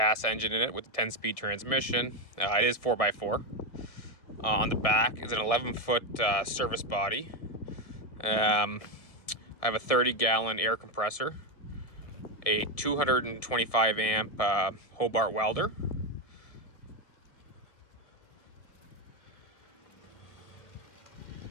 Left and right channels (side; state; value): right; late; 1.6 ms